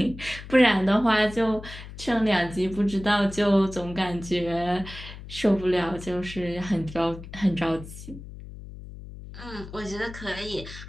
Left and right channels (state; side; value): noise; left; hum, 13 dB below the sound